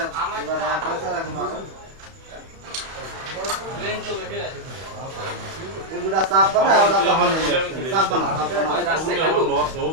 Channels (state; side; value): late; left; 31 ms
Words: এবার পয়সা রাখি মারো লেন চলে কে এগুলা সাপ বানা ওটা তো হল সাপ বানা রাস্তা খালি লস ও